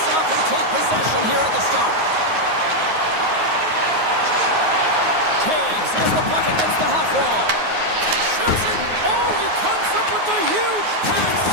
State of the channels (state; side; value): late; left; 9.5 ms